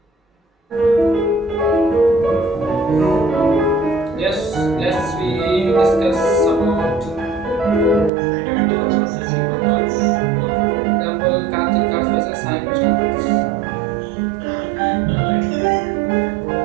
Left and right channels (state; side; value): drops out; left; at 8.1 s